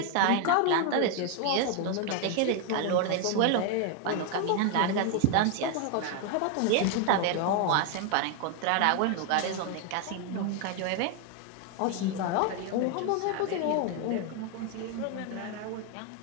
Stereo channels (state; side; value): different; both; correlation 0.01